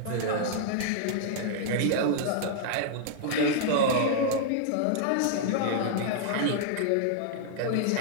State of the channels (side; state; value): both; different; correlation -0.01